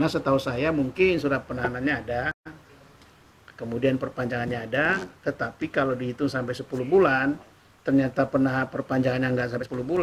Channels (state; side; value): identical; both; correlation 1.00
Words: setahu saya mungkin surat penahanannya ada, kemudian perpanjangannya ada, tetapi kalau dihitung sampai 10 bulan, ternyata perpanjangannya nggak sampai 10